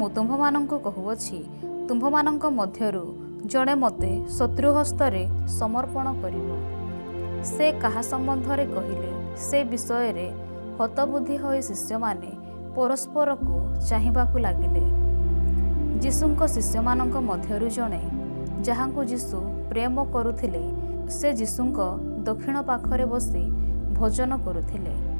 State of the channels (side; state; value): both; inverted; correlation -1.00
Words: ତୁମ୍ଭମାନଙ୍କୁ କହୁଅଛି, ତୁମ୍ଭମାନଙ୍କ ମଧ୍ୟରୁ ଜଣେ ମୋତେ ଶତ୍ରୁହସ୍ତରେ ସମର୍ପଣ କରିବ। ସେ କାହା ସମ୍ବନ୍ଧରେ କହିଲେ ସେ ବିଷୟରେ ହତବୁଦ୍ଧି ହୋଇ ଶିଷ୍ୟମାନେ ପରସ୍ପରକୁ ଚାହିଁବାକୁ ଲାଗିଲେ। ଯୀଶୁଙ୍କ ଶିଷ୍ୟମାନଙ୍କ ମଧ୍ୟରୁ ଜଣେ, ଯାହାଙ୍କୁ ଯୀଶୁ ପ୍ରେମ କରୁଥିଲେ, ସେ ଯୀଶୁଙ୍କ ଦକ୍ଷିଣ ପାଖରେ ବସି ଭୋଜନ କରୁଥିଲେ।